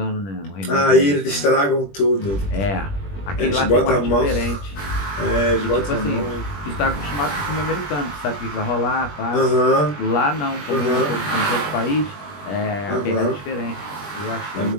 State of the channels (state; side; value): late; right; 21 ms